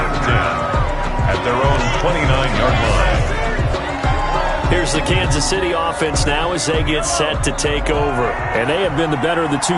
At their own 29-yard line. Here's the Kansas City offense now as they get set to take over. And they have been the better of the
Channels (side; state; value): both; identical; correlation 1.00